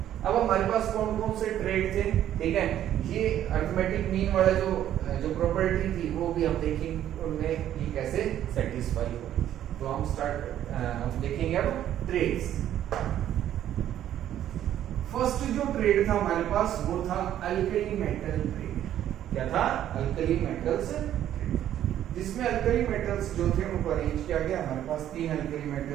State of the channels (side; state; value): left; quieter; 11.4 dB